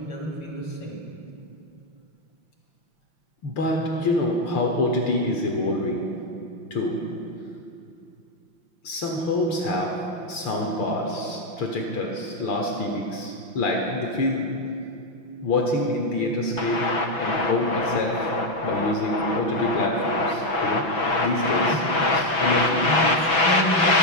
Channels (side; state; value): right; late; 5.8 ms